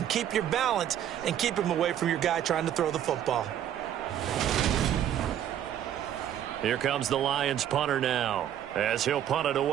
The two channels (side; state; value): left; quieter; 10.5 dB